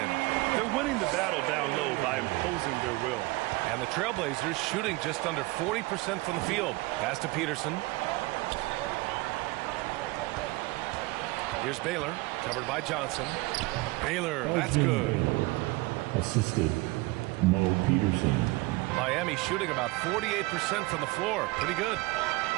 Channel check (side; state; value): left; quieter; 22.3 dB